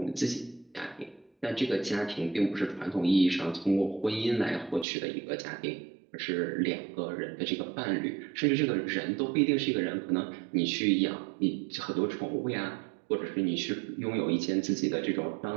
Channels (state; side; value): drops out; left; at 4.9 s